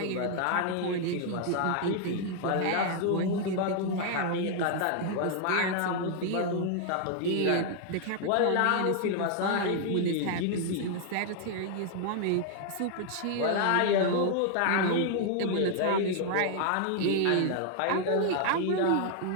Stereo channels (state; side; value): different; both; correlation 0.00